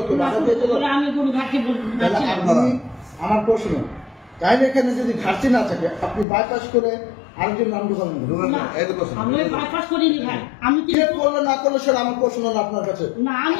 তো বাধা দিয়েছিল আমার প্রশ্ন তাইলে এখানে যদি ঘাটতি না থাকে আপনি বাইপাস করে আরেকজন নাম ঢুকাবেন করলে না করলে সেটা আমার প্রশ্ন হলো আপনার কাছে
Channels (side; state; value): right; drops out; at 6.2 s